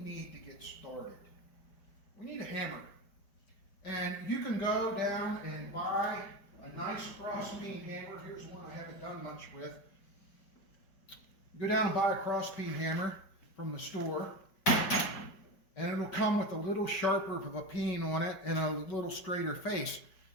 to get started? We need a hammer. And you can go down and buy a nice cross-beam hammer. Here's one I haven't done much with. Go down and buy a cross-beam hammer from the store, and it'll come with a little sharper of a peen on it and a little straighter face.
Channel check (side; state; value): right; late; 5.1 ms